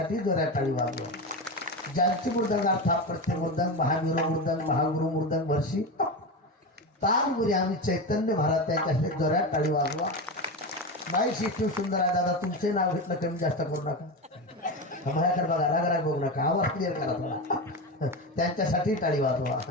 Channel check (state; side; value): normal; both; correlation 0.19